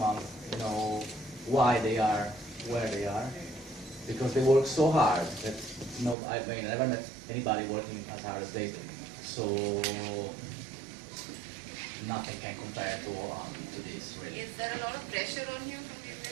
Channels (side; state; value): left; drops out; at 6.2 s